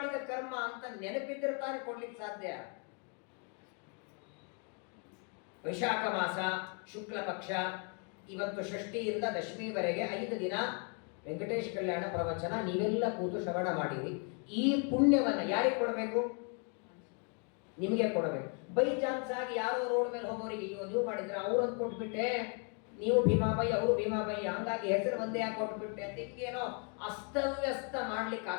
ಕರ್ಮ ಅಂತ ನೆನಪಿದ್ರೆ ತಾನೇ ಕೊಡ್ಲಿಕ್ಕೆ ಸಾಧ್ಯ. ವೈಶಾಖ ಮಾಸ ಶುಕ್ಲ ಪಕ್ಷ, ಇವತ್ತು ಷಷ್ಠಿಯಿಂದ ದಶಮಿವರೆಗೆ 5 ದಿನ ವೆಂಕಟೇಶ್ ಕಲ್ಯಾಣ ಪ್ರವಚನ ನೀವೆಲ್ಲ ಕೂತು ಶ್ರವಣ ಮಾಡಿರಿ. ಈ ಪುಣ್ಯವನ್ನ ಯಾರಿಗೆ ಕೊಡಬೇಕು? ನಿಮಗೆ ಕೊಡಬೇಕು. ಬೈ ಚಾನ್ಸ್ ಆಗಿ ಯಾರೋ ರೋಡ್ ಮೇಲೆ ಹೋಗೋರಿಗೆ ನೀವು ಮಾಡಿದ್ರೆ ಅವ್ರನ್ನ ಕೊಟ್ಬಿಟ್ಟೆ, ನೀವು ಭೀಮಾಬಾಯಿ ಅವರು ಭೀಮಾಬಾಯಿ, ಹಂಗಾಗಿ ಹೆಸರು ಒಂದೇ ಯಾಕೆ ಕೊಟ್ಬಿಟ್ಟೆ ಅಂತ ಹಿಂಗೇನೋ ಅಸ್ತವ್ಯಸ್ತ ಮಾಡ್ಲಿಕ್ಕೆ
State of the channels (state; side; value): quieter; right; 38.7 dB